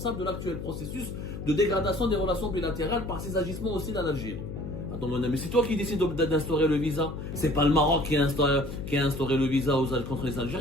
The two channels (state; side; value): noise; left; hum, 8 dB below the sound